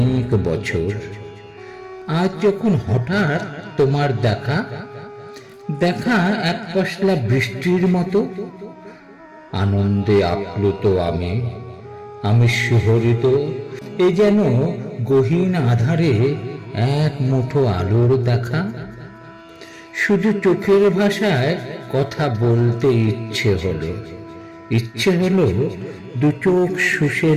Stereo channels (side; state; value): both; identical; correlation 1.00